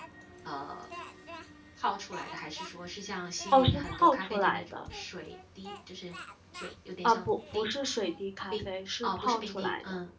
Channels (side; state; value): both; identical; correlation 1.00